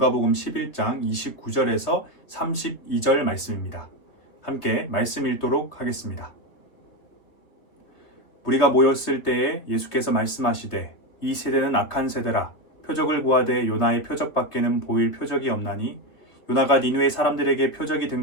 11장 29절에서 32절 말씀입니다. 함께 말씀 읽도록 하겠습니다. 우리가 모였을 때에 예수께서 말씀하시되 이 세대는 악한 세대라 표적을 구하되 요나의 표적밖에는 보일 표적이 없나니 요나가 니느웨 사람들에게 표적이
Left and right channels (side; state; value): right; late; 3.0 ms